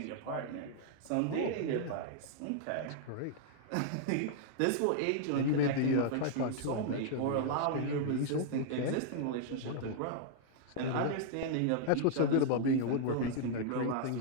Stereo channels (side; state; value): both; different; correlation -0.01